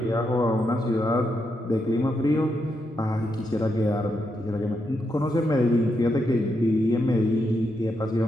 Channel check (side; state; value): both; normal; correlation 0.82